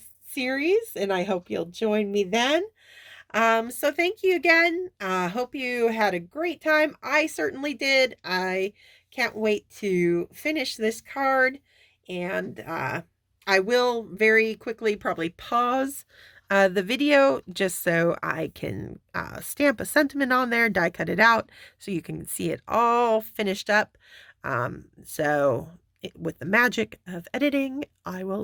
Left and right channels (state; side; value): identical; both; correlation 1.00